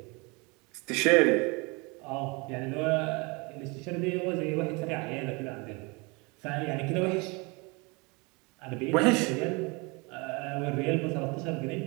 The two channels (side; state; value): left; quieter; 28.4 dB